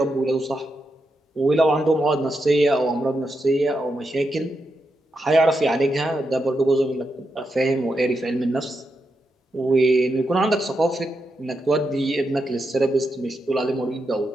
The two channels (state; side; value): normal; both; correlation 0.85